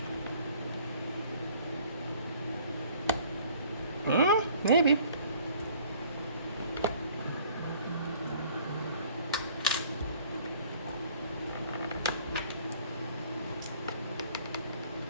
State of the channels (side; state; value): both; inverted; correlation -0.55